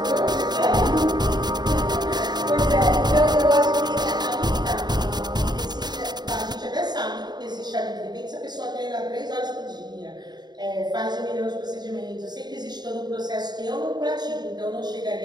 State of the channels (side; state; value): left; late; 0.20 ms